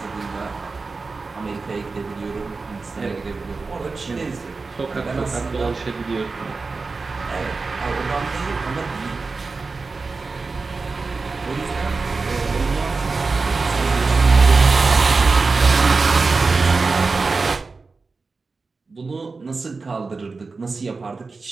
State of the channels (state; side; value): quieter; left; 4.1 dB